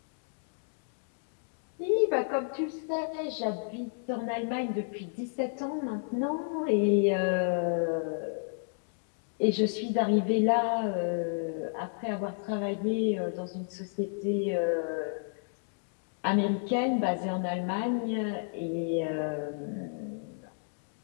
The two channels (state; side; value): silent; right; digital silence